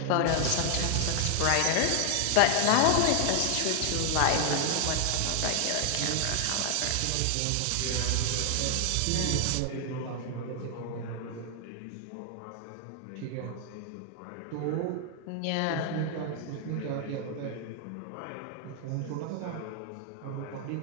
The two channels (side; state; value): both; different; correlation 0.00